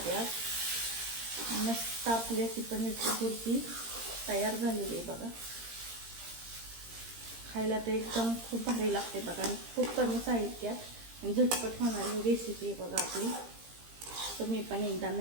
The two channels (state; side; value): late; left; 17 ms